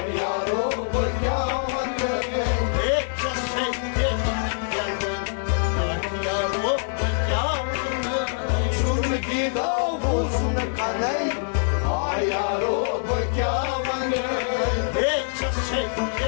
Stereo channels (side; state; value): right; silent; 57 dB below the other